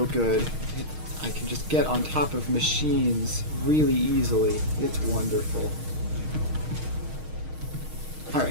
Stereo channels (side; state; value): left; late; 6.4 ms